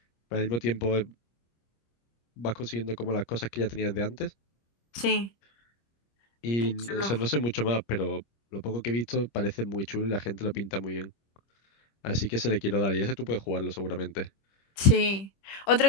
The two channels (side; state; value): right; late; 25 ms